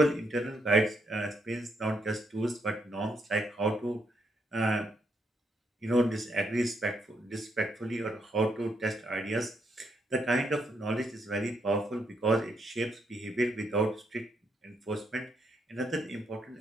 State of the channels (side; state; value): both; normal; correlation 0.77